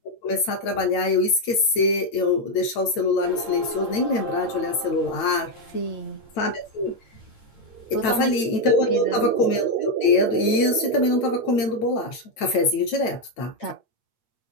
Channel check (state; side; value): late; right; 9.1 ms